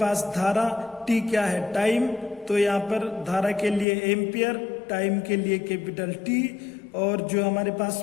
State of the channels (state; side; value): drops out; right; at 3.9 s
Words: धारा, T क्या है टाइम। तो यहाँ पर धारा के लिए एम्पियर, टाइम के लिए कैपिटल T, और जो हमारे पास